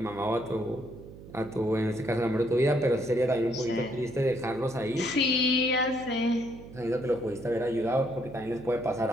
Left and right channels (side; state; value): right; noise; hum, 16 dB below the sound